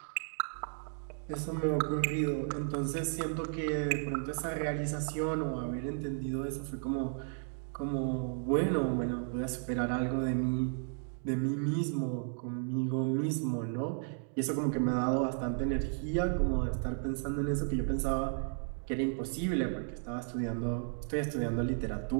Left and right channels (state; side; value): silent; left; 55 dB below the other